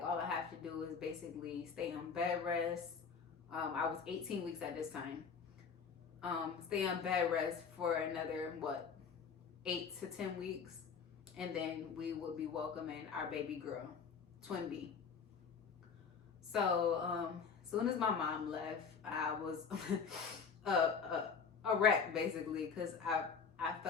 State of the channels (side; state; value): right; quieter; 6.0 dB